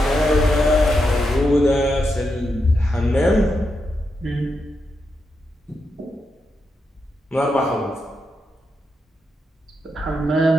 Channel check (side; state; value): both; normal; correlation 0.84